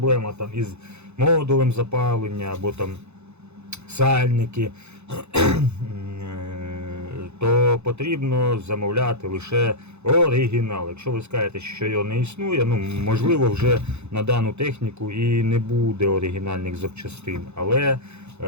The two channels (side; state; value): left; late; 0.81 ms